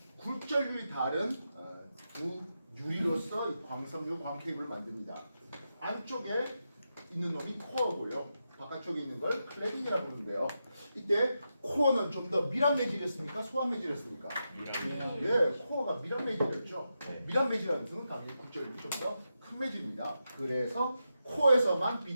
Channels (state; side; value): inverted; both; correlation -0.87